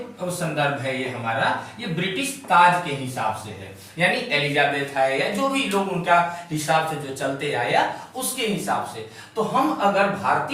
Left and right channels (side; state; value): both; identical; correlation 1.00